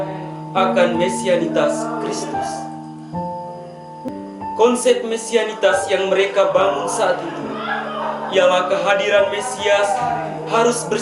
akan mesianitas Kristus. Konsep mesianitas yang mereka bangun saat itu ialah kehadiran Mesias harus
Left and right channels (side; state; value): both; identical; correlation 1.00